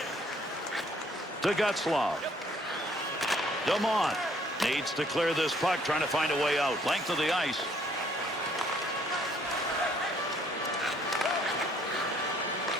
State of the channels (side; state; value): both; normal; correlation 0.63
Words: To Getzlaf. Dumont needs to clear this puck, trying to find a way out. Length of the ice.